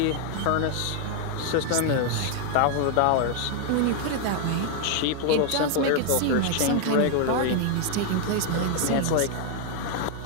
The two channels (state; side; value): different; both; correlation 0.00